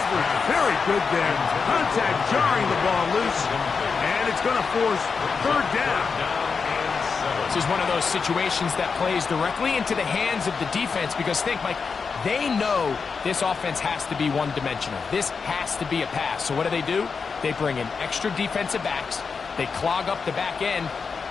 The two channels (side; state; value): right; quieter; 5.3 dB